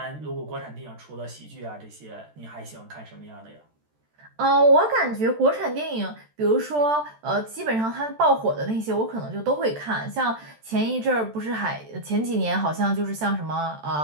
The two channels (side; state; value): left; late; 13 ms